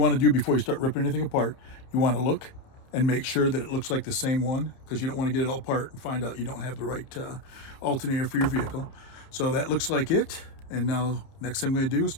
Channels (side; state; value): right; late; 30 ms